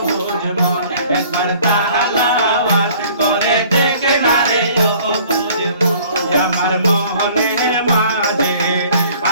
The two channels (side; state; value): both; inverted; correlation -0.53